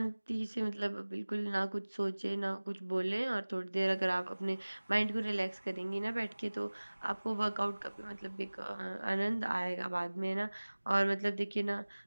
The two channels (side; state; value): both; inverted; correlation -1.00